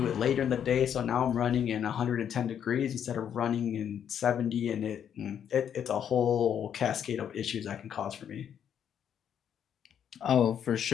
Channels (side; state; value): right; quieter; 8.9 dB